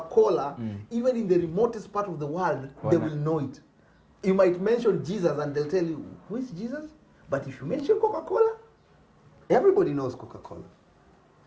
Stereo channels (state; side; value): identical; both; correlation 1.00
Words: even in the remotest part of the world, they will know it. You might mention Jesus and they'll tell you, who is Jesus? But if you mention Coca-Cola, everybody knows Coca-Cola.